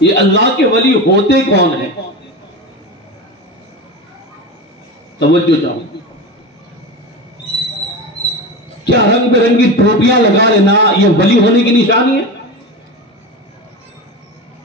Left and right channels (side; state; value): both; normal; correlation 0.24